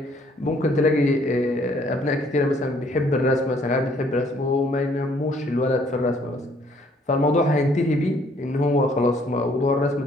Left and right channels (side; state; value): both; normal; correlation 0.63